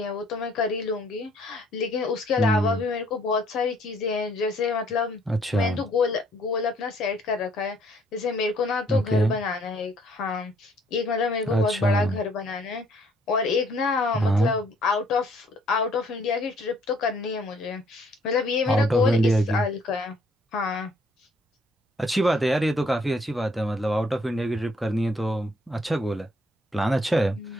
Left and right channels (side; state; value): both; normal; correlation 0.64